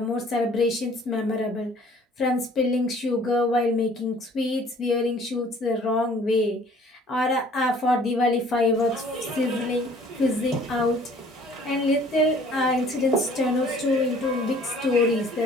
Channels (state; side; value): normal; both; correlation 0.54